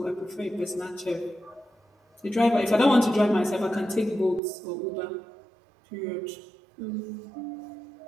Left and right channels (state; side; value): drops out; left; at 4.4 s